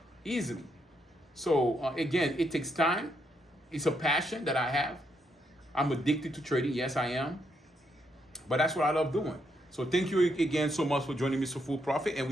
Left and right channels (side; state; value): both; normal; correlation 0.77